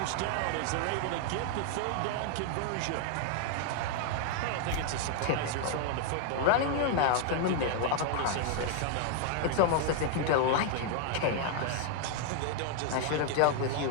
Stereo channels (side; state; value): both; different; correlation 0.00